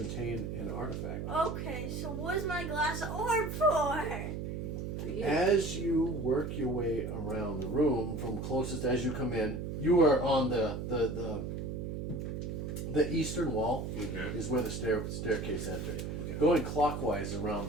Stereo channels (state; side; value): noise; right; hum, 4 dB below the sound